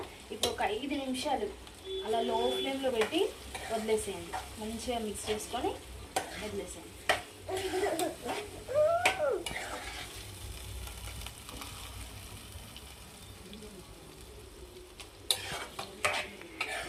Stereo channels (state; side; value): identical; both; correlation 1.00